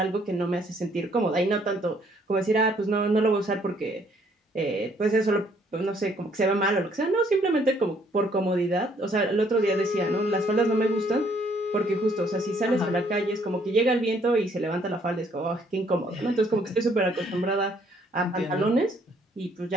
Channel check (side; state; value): both; normal; correlation 0.65